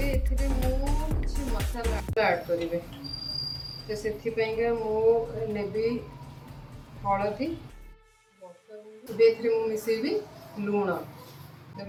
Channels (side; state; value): both; identical; correlation 1.00